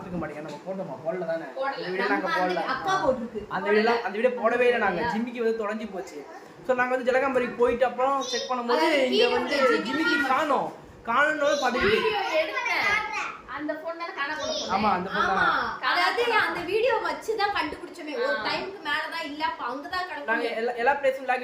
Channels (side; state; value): both; identical; correlation 1.00